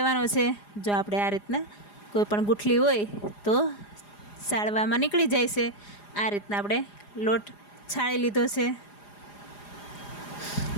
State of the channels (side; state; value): right; late; 4.9 ms